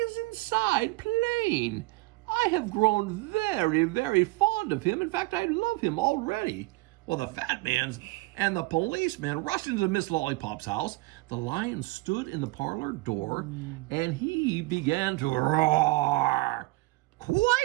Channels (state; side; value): quieter; left; 22.1 dB